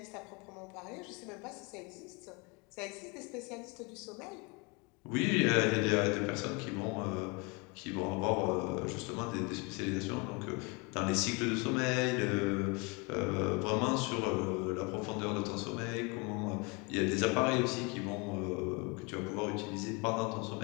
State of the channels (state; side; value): quieter; right; 29.5 dB